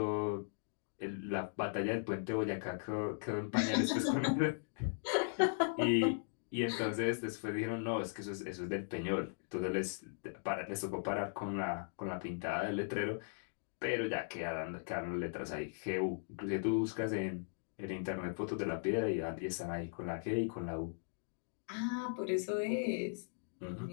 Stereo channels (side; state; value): right; silent; digital silence